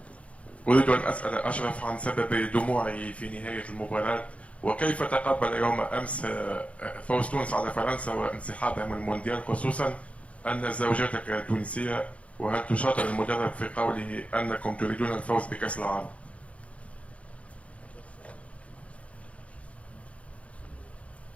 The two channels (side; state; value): right; late; 0.064 ms